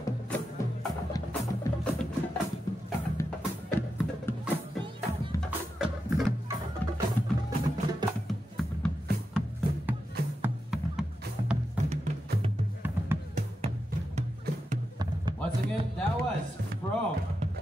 Once again, that was from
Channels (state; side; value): normal; both; correlation 0.88